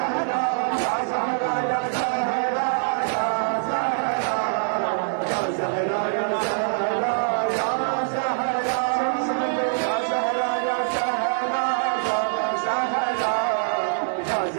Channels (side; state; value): left; silent; digital silence